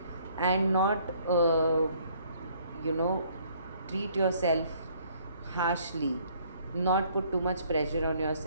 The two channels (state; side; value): inverted; both; correlation -0.62